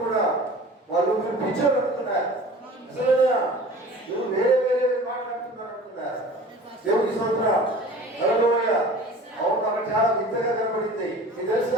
కూడా వాళ్ళు మీరు పిచ్చోళ్ళు అనుకున్నారు. అసలు నువ్వు వేరే మాట్లాడుతున్నారు అనుకున్నారు. దేవుని స్తోత్రం. హల్లెలూయా. అవును, అక్కడ చాలా వింతగా కనబడింది. మీకు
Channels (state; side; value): normal; both; correlation 0.42